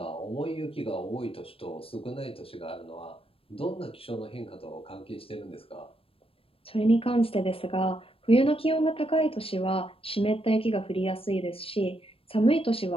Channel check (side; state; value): right; late; 0.27 ms